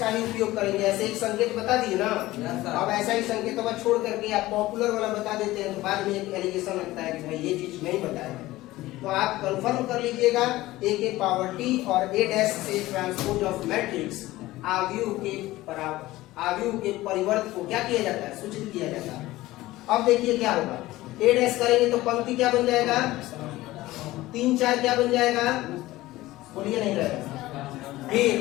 ही उपयोग करेंगे। ऐसे एक संकेत बता दिए ना, अब ऐसा ही संकेत अब छोड़ करके आप पॉपुलर वाला बता देते हैं तो बाद में एक एलिगेशन लगता है कि भाई ये चीज नहीं बताया। तो आप कंफर्म कर लीजिएगा, a के पावर t और a डैश से ट्रांसपोज ऑफ मैट्रिक्स आव्यूह के परिवर्त को क्या किया जाता है, सूचित किया जाता है। अब देखिए क्या होगा, a डैश करेंगे तो पंक्ति क्या बन जाएगा, 3 4 क्या बन जाएगा, बोलिए नहीं रहेगा। फिर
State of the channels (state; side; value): quieter; right; 17.5 dB